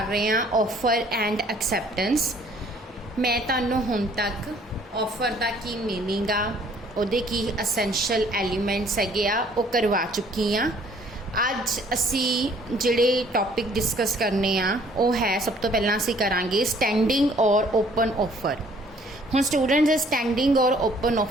ਰਹੇ ਹਾਂ ਆਫਰ ਐਂਡ ਐਕਸੈਪਟੈਂਸ। ਮੈਂ ਤੁਹਾਨੂੰ ਹੁਣ ਤੱਕ ਆਫਰ ਦਾ ਕੀ ਮੀਨਿੰਗ ਆ, ਉਹਦੇ ਕੀ ਅਸੈਂਸ਼ੀਅਲ ਐਲੀਮੈਂਟਸ ਹੈਗੇ ਆ, ਉਹ ਕਰਵਾ ਚੁੱਕੀ ਹਾਂ। ਅੱਜ ਅਸੀਂ ਜਿਹੜੇ ਟੌਪਿਕ ਡਿਸਕਸ ਕਰਨੇ ਆ ਉਹ ਹੈ, ਸਭ ਤੋਂ ਪਹਿਲਾਂ ਅਸੀਂ ਕਰਾਂਗੇ ਸਟੈਂਡਿੰਗ ਔਰ ਓਪਨ ਆਫਰ। ਹੁਣ ਸਟੂਡੈਂਟਸ, ਸਟੈਂਡਿੰਗ ਔਰ ਓਪਨ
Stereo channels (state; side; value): normal; both; correlation 0.59